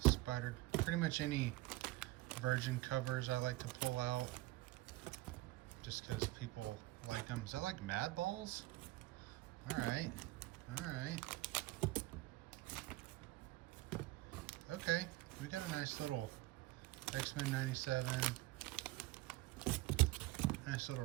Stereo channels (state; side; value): quieter; left; 19.0 dB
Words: Spider. Pretty much any Virgin covers I like to pull out, just because people like them. Is that like Mad Balls? Alright. Alright. Okay. We got a nice little X-Men 97. Nice little